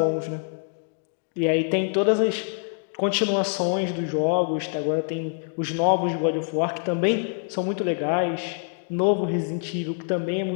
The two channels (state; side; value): silent; right; 61 dB below the other